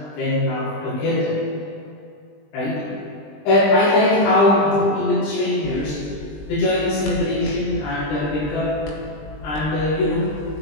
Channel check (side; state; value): right; late; 20 ms